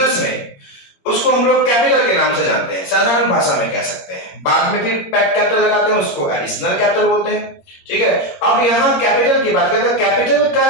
में, उसको हम लोग कैपिटल के नाम से जानते हैं, साधारण भाषा में कह सकते हैं। बाद में फिर पैक कैपिटल लगाते हैं, उसको एडिशनल कैपिटल बोलते हैं। ठीक है, अब यहां कैपिटल की बात करते हैं। कैपिटल का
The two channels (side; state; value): right; late; 21 ms